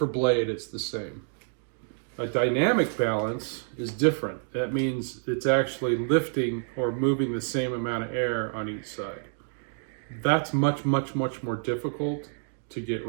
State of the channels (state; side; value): silent; left; digital silence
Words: blade, it's the same. A dynamic balance is different. That means it's actually lifting or moving the same amount of air on each side. That's much, much, much more difficult to get